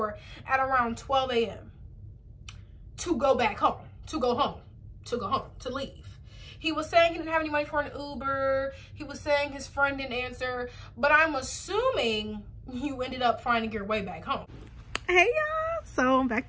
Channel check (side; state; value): both; identical; correlation 1.00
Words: at around 12 a.m. to go back home, to leave. He was saying he didn't have any money for an Uber. He was saying his friend didn't answer, but I'm assuming you ended up finding your way back home. Hey y'all, so I'm